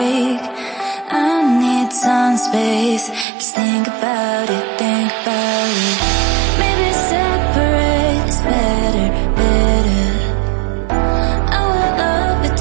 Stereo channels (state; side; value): drops out; left; at 3.2 s